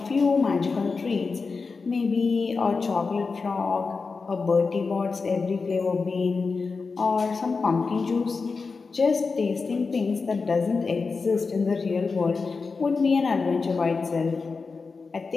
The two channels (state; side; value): quieter; right; 4.5 dB